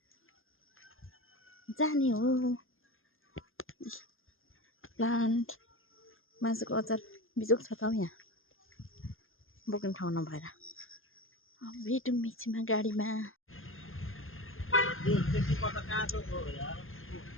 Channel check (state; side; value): late; right; 0.60 ms